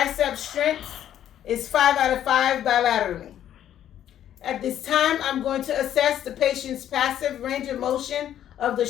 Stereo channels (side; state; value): right; quieter; 10.9 dB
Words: strength is 5 out of 5 bilaterally. At this time, I'm going to assess the patient's passive range of motion of the